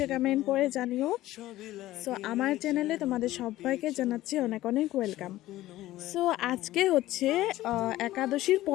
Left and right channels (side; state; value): right; quieter; 15.7 dB